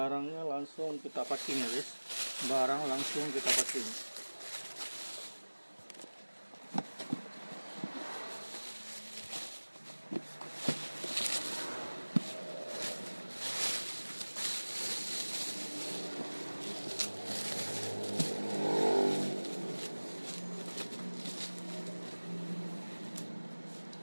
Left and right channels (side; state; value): both; inverted; correlation -1.00